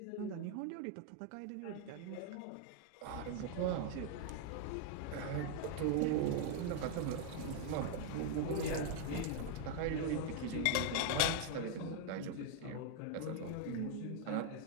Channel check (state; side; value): different; both; correlation 0.00